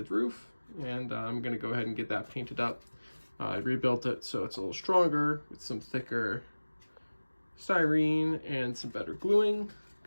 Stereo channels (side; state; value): both; inverted; correlation -1.00